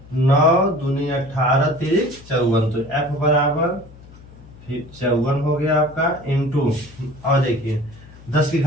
9 दूनी 18 तिरिक 54। तो f बराबर 54 हो गया आपका इंटू, और देखिए 10 की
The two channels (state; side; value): noise; left; hum, 21 dB below the sound